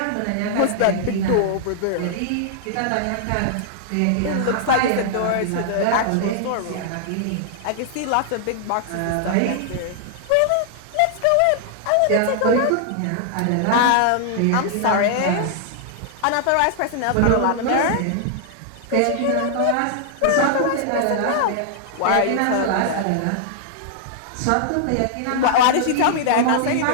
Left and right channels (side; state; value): both; different; correlation -0.01